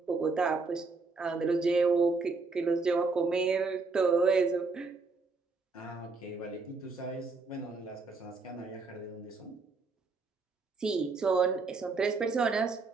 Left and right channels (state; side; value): quieter; left; 4.0 dB